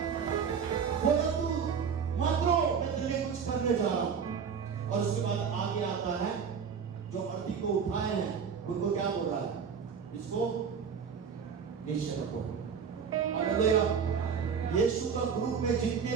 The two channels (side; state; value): left; quieter; 6.6 dB